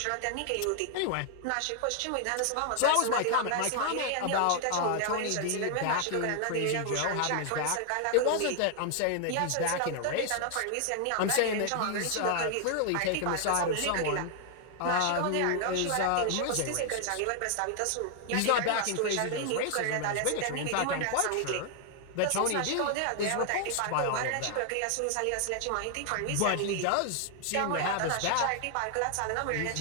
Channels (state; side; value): different; both; correlation 0.00